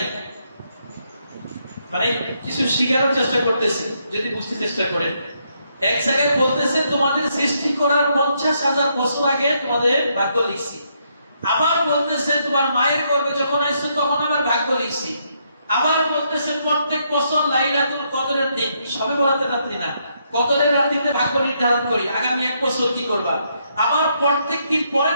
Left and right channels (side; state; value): both; inverted; correlation -0.75